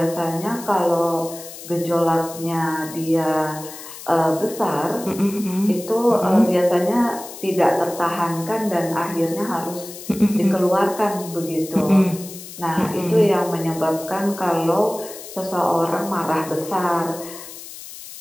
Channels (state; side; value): noise; left; hiss, 14 dB below the sound